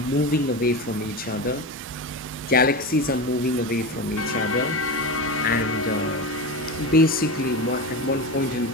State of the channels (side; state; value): both; normal; correlation 0.23